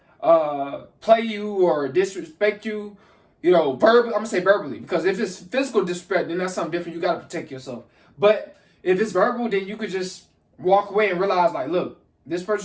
saying, play you or disrespect you, verbally, I'm going to say verbally, because if it's physical disrespect, then that's something different. You got to protect yourself. But if it's verbal, then you could just walk away and realize, like, look, this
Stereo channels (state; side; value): identical; both; correlation 1.00